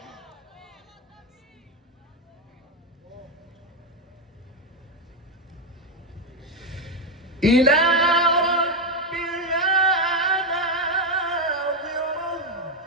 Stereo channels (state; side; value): normal; both; correlation 0.05